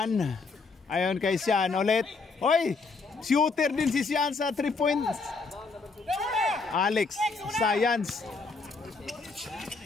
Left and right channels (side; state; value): right; quieter; 4.2 dB